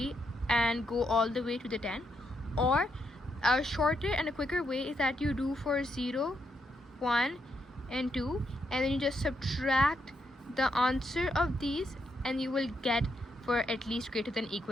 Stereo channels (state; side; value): normal; both; correlation 0.79